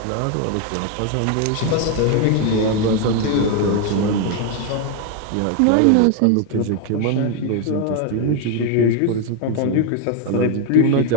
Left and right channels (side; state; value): both; different; correlation 0.01